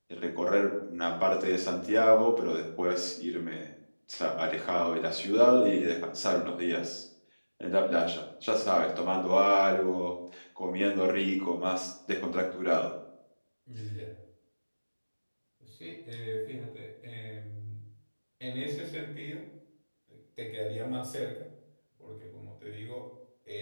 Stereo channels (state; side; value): inverted; both; correlation -1.00